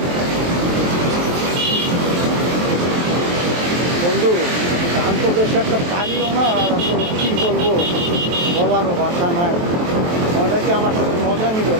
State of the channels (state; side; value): late; left; 23 ms